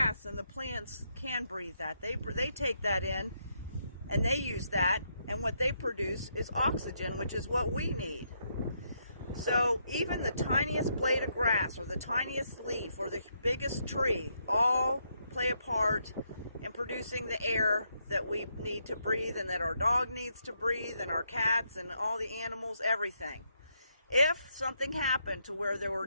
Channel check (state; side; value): inverted; both; correlation -0.77